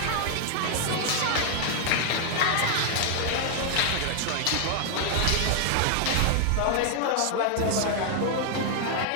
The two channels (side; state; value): both; different; correlation 0.00